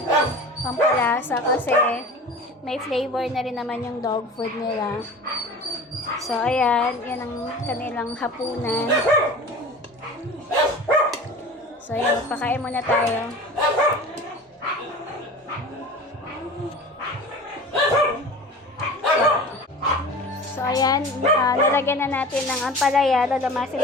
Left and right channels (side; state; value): both; normal; correlation 0.37